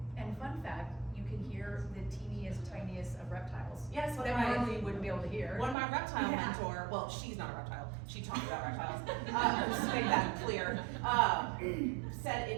And fun fact, you can hear the teeniest, tiniest of reptiles. Yes, That normally you wouldn't be able to hear. When my reptile Yeah. mentor, well, she's not a reptile, she taught me about reptiles, just to make that clear, said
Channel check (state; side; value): drops out; left; at 5.8 s